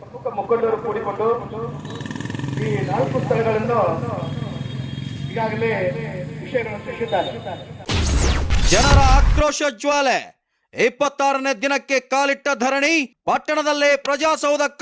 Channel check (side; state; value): both; identical; correlation 1.00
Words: ಮುಖಂಡರು ಕೂಡಿಕೊಂಡು ಈ 4 ಸ್ಥಳಗಳನ್ನು ಈಗಾಗಲೇ ವಿಷಯಗಳನ್ನು ತಿಳಿಸಿದ್ದಾರೆ. ಜನರ ಆಕ್ರೋಶ ಜ್ವಾಲೆ. 26ನೇ ದಿನಕ್ಕೆ ಕಾಲಿಟ್ಟ ಧರಣಿ, ಪಟ್ಟಣದಲ್ಲೇ ಪ್ರಜಾಸೌಧ